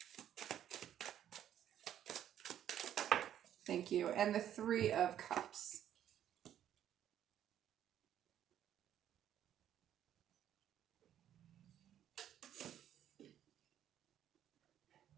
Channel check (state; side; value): quieter; left; 10.7 dB